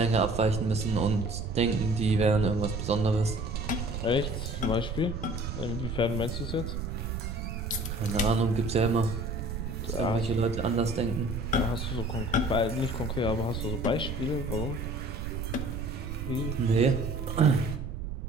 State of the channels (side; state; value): right; noise; rumble, 5 dB below the sound